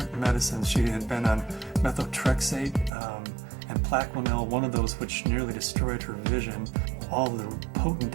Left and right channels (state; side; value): drops out; left; at 2.9 s